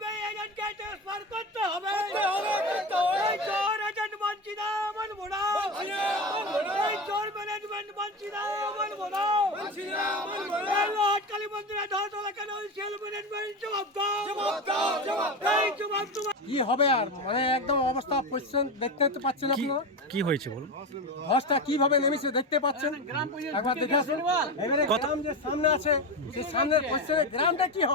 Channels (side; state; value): both; normal; correlation 0.20